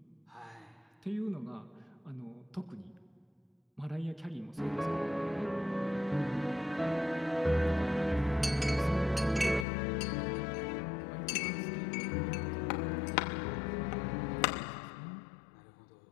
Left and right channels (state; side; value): drops out; right; at 9.7 s